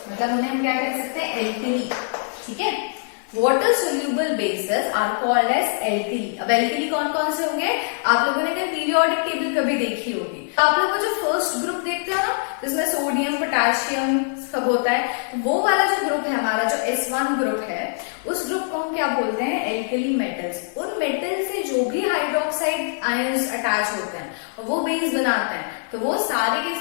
मतलब उन्हें हम क्या कह सकते हैं, एल्कली। ठीक है, water soluble bases are called as alkali. अब एल्कली कौन कौन से होंगे, आप लोगों ने अगर पीरियोडिक टेबल कभी देखी होगी तो आप लोगों को जो फर्स्ट ग्रुप देखते हो ना जिसमें सोडियम पोटेशियम सब होता है, वो वाला जो ग्रुप है हमारा जो S1 ग्रुप है, उस ग्रुप को हम क्या बोलते हैं, एल्कली मेटल्स। उन मेटल से जो भी हाइड्रोक्साइड आयंस अटैच होते हैं और वो बेस बनाते हैं तो वो सारे के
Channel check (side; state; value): right; silent; 63 dB below the other